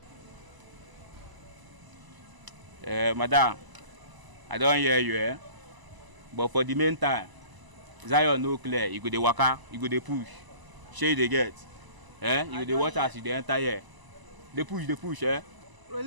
Madam, I don't hear you, but for the meantime, Zion no clear, you go dey waka, you go dey push. Shey dey get. You go dey watch as you dey enter here. Dey push,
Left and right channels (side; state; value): left; late; 1.0 ms